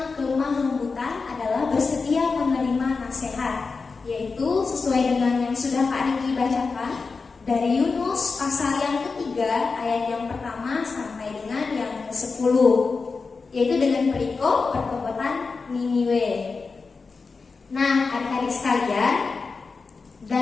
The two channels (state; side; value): quieter; right; 4.5 dB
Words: kelemah lembutan adalah bersedia menerima nasihat, yaitu sesuai dengan yang sudah Kak Riki bacakan dari Yunus pasal yang ketiga ayat yang pertama sampai dengan yang ke-10, yaitu dengan perikop pertobatan Niniwe. Nah, adik-adik sekalian,